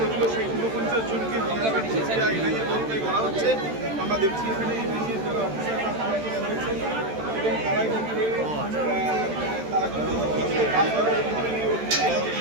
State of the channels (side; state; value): left; late; 13 ms